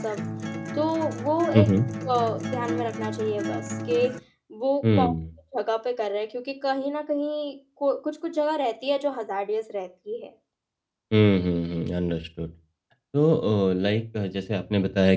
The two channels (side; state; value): both; identical; correlation 1.00